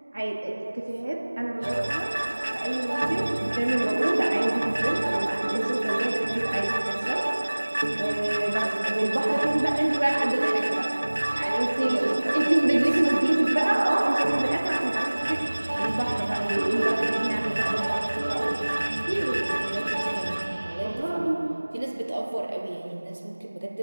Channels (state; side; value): inverted; both; correlation -1.00